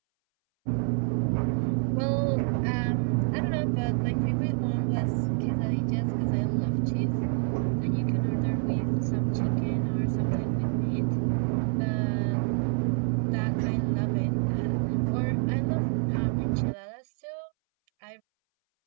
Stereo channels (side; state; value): left; silent; 60 dB below the other